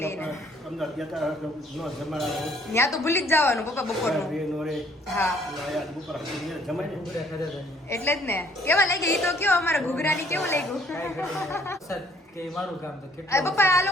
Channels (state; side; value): normal; both; correlation 0.62